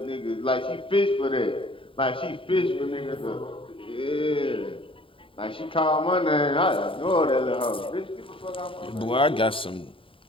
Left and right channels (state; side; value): late; right; 0.25 ms